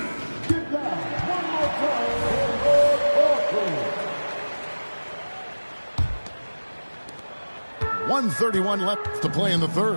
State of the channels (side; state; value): both; inverted; correlation -1.00